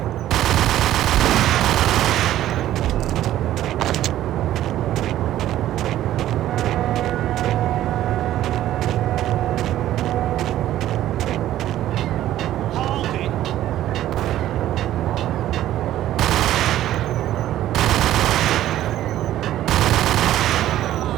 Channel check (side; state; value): left; quieter; 13.2 dB